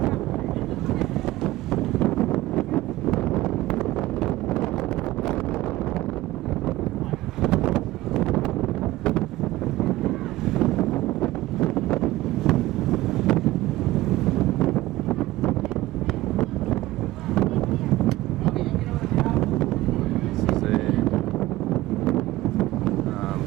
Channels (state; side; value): quieter; left; 17.3 dB